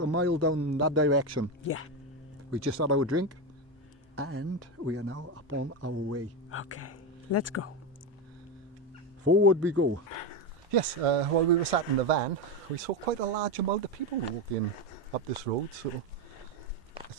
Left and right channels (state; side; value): normal; both; correlation 0.13